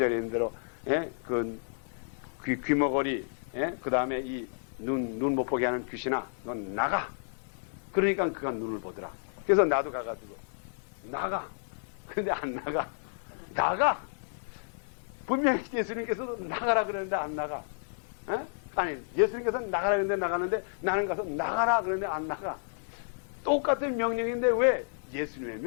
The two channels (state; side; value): silent; right; 57 dB below the other